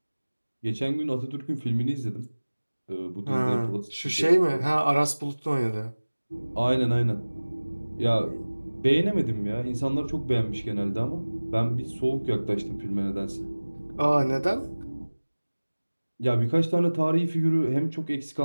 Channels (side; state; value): both; inverted; correlation -1.00